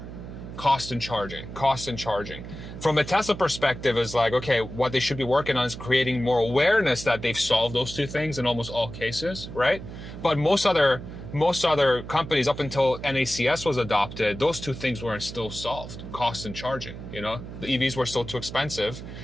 Cost and charging. From a Tesla perspective, is like, okay, what they should be working on is creating more awareness that they've solved those 2 things in almost all cases, right? But most other companies, up until NACS was adopted, those 2 things weren't still solved. Cost and charging, you know? The EVs were still too expensive.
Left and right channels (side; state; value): right; noise; hum, 11 dB below the sound